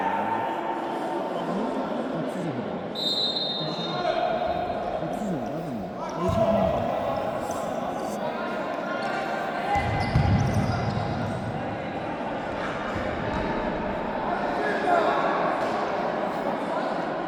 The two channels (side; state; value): both; identical; correlation 1.00